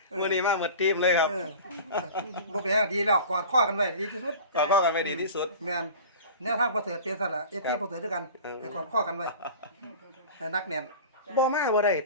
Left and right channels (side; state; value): both; inverted; correlation -0.38